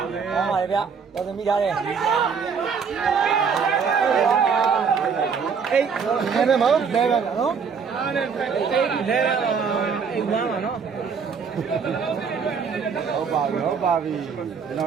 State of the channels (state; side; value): quieter; left; 6.0 dB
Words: ပါဗျာတော်သမီးထားတယ်အေးနေမယ်မဟုတ်လဲပါနော်အားလည်းလဲရအောင်အိမ်ဝမ်းပါနော်ဟုတ်ပါပြီကျွန်တော